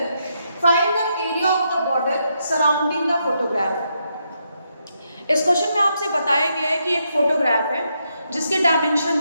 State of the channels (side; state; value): both; inverted; correlation -0.80